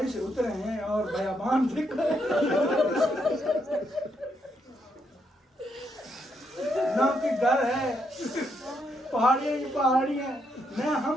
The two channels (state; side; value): normal; both; correlation 0.77